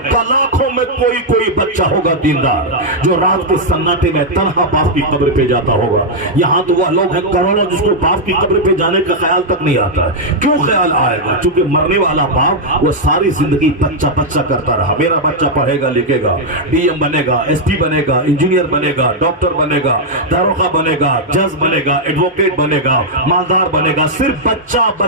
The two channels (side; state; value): both; normal; correlation -0.04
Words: لاکھوں میں کوئی بچہ ہوگا دیندار جو رات کے سناٹے میں تنہا باپ کی قبر پہ جاتا ہوگا۔ یہاں تو وہ لوگ ہیں کروڑوں جس کو باپ کی قبر پہ جانے کا خیال تک نہیں آتا ہے۔ کیوں خیال آئے گا؟ چونکہ مرنے والا باپ وہ ساری زندگی بچہ کرتا رہا، میرا بچہ پڑھے گا لکھے گا، ڈی ایم بنے گا، ایس پی بنے گا، انجینئر بنے گا، ڈاکٹر بنے گا، داروغہ بنے گا، جج بنے گا، ایڈوکیٹ بنے گا، مالدار بنے گا، صرف بچہ۔